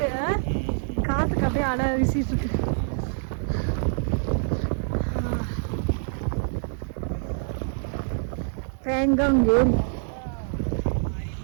காற்றுக்கு அப்படியே அடை வீசிட்டு இருக்கு. பேங்காங் ஏரி.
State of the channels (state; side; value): silent; left; 61 dB below the other